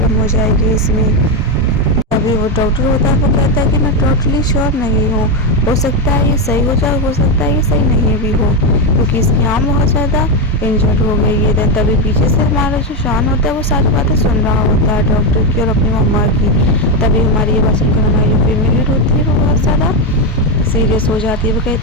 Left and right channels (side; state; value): both; normal; correlation 0.08